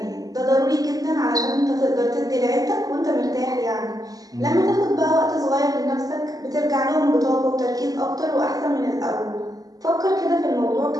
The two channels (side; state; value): left; late; 0.18 ms